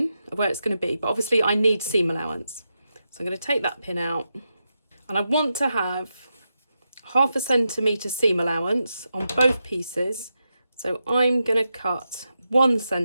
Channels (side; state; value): both; inverted; correlation -0.87